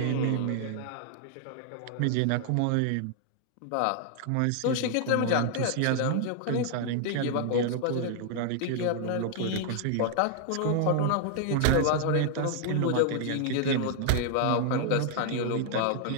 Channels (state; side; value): different; both; correlation 0.00